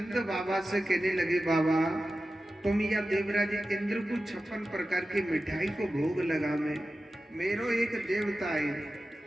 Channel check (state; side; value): normal; both; correlation 0.94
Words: बाबा से कहने लगे बाबा तुम या देवराज इंद्र को 56 प्रकार की मिठाई को भोग लगा में मेरो एक देवता है